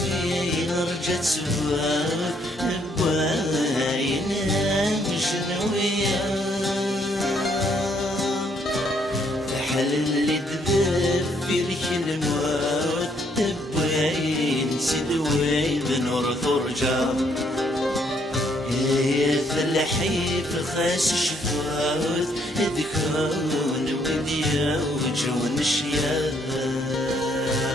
رجت سواب بواينا مشنوية فحل اللي تذب في ريك الموت تبوين سدوي بنور ثرجا يا فلاحي في خاس شفاوت ذكرون وديا وجون الشياب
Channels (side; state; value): both; normal; correlation 0.69